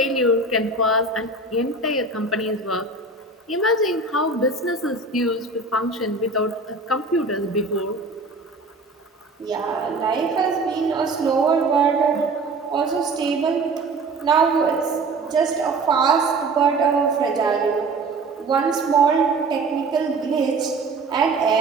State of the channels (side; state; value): left; quieter; 3.4 dB